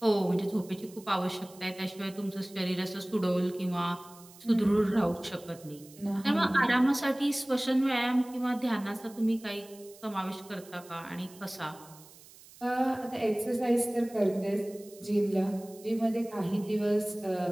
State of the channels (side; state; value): right; noise; hiss, 22 dB below the sound